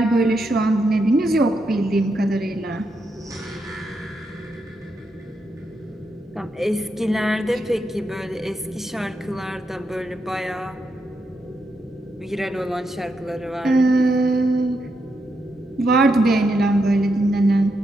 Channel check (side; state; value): both; normal; correlation 0.82